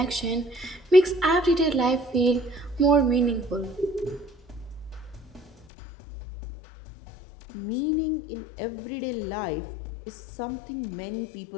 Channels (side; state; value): right; drops out; at 5.7 s